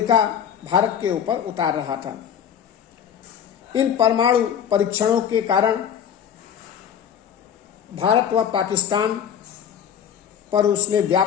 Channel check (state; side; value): quieter; right; 8.5 dB